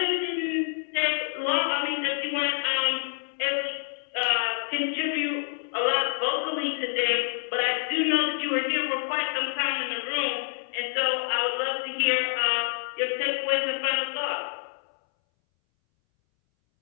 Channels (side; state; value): right; silent; 60 dB below the other